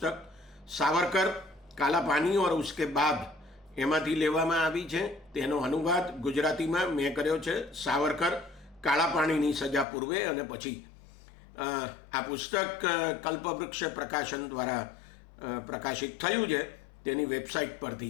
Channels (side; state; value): right; drops out; at 9.9 s